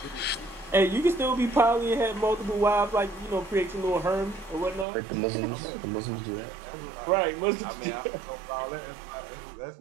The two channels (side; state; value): left; drops out; at 4.9 s